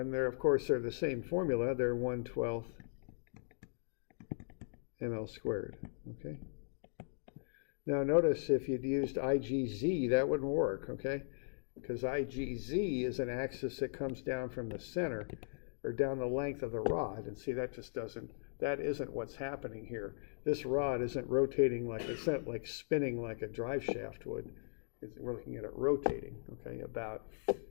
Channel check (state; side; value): silent; right; digital silence